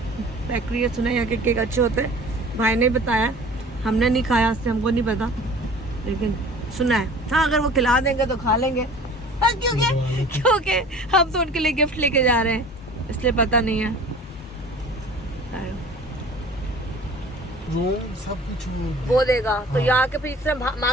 बेकरी है, सुना यहाँ के केक अच्छे होते हैं। भाई ने बताया, हमने नहीं खाया इससे हमको नहीं पता, लेकिन सुना है। हाँ अगर वो खिला देंगे तो खा लेंगे, क्योंकि हम तो उनके लिए गिफ्ट लेके जा रहे हैं, इसलिए पता नहीं है। सब कुछ वो देगा तो यहाँ के पीछे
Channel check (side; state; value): both; normal; correlation 0.44